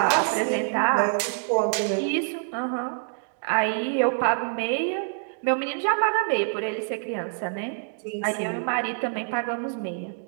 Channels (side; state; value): left; silent; digital silence